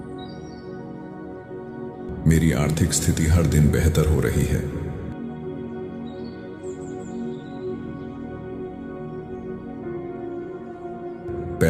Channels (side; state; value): both; identical; correlation 1.00